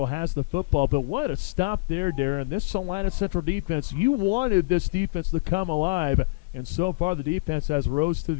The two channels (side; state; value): right; quieter; 27.7 dB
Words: has the football. But what a stop there, Darren. This Salina Central defense, you wanted this defense to come alive, and so far the defense has rose to